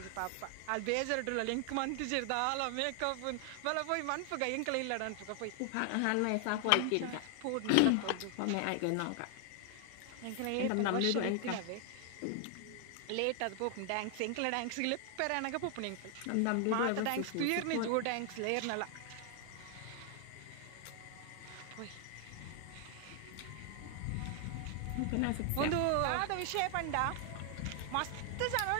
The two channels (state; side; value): different; both; correlation 0.00